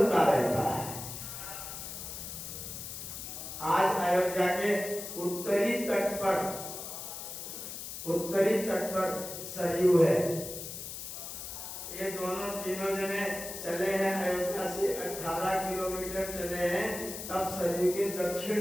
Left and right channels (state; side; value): noise; left; hiss, 8 dB below the sound